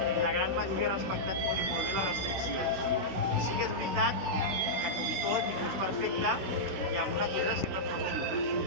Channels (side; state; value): left; late; 16 ms